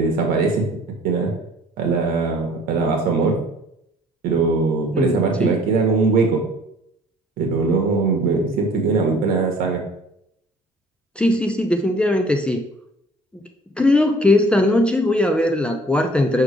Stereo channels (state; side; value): normal; both; correlation 0.54